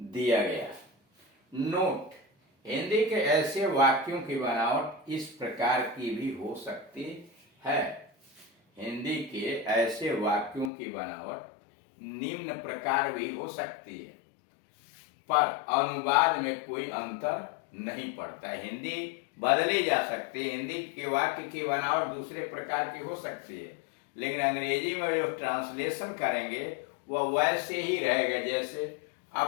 दिया गया। नोट, हिंदी के ऐसे वाक्यों की बनावट इस प्रकार की भी हो सकती है। हिंदी के ऐसे वाक्यों की बनावट निम्न प्रकार भी हो सकती है, पर अनुवाद में कोई अंतर नहीं पड़ता है। हिंदी बदली जा सकती है, हिंदी के वाक्य की बनावट दूसरे प्रकार की हो सकती है, लेकिन अंग्रेजी में जो ट्रांसलेशन करेंगे वह वैसे ही रहेगा जैसे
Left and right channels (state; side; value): drops out; right; at 10.7 s